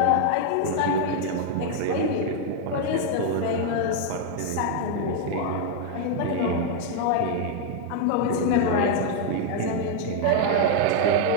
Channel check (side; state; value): both; different; correlation 0.00